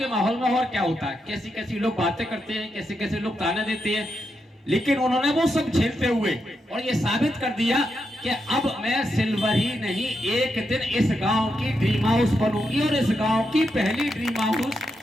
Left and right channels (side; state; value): both; normal; correlation 0.84